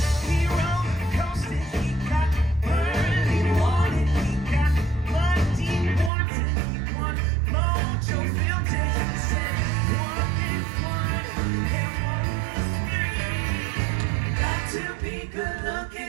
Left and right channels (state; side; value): drops out; left; at 6.1 s